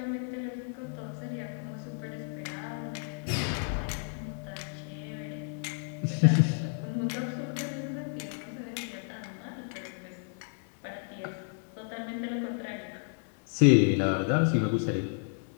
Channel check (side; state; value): right; silent; 57 dB below the other